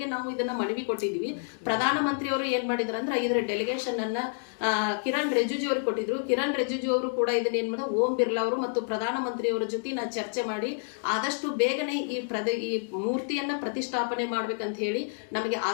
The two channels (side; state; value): right; silent; digital silence